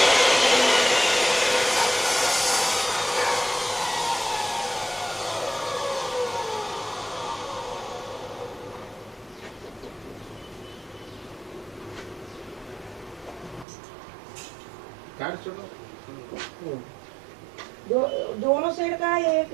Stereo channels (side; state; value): left; drops out; at 13.7 s